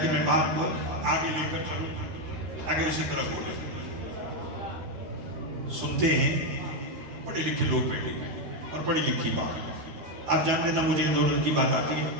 کہ میں بات کو آگے لے کر چلوں، آگے اسی طرح بولے. سنتے ہیں پڑھے لکھے لوگ بیٹھے اور پڑھی لکھی بات. آپ جانتے تھا مجھے دولت کی بات آتی ہے،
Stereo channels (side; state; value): left; late; 13 ms